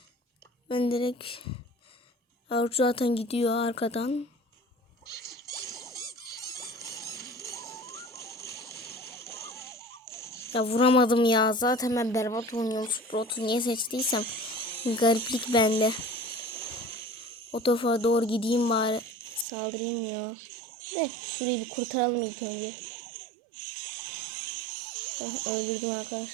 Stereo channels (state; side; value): drops out; left; at 19.5 s